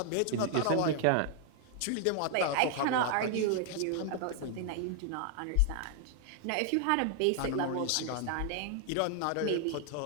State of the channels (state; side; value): different; both; correlation 0.00